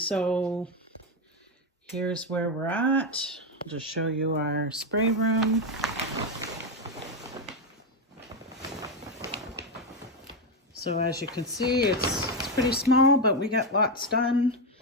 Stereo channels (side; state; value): both; normal; correlation 0.08